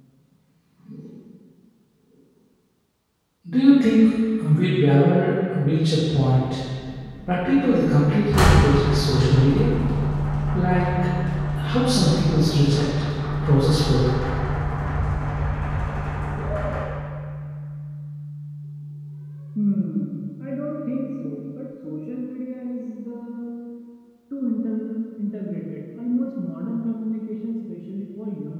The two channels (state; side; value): identical; both; correlation 1.00